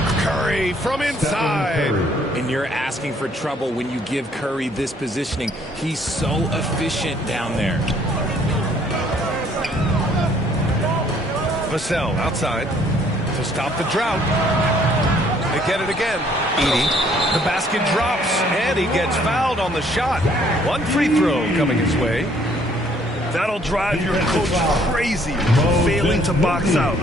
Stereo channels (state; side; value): normal; both; correlation 0.63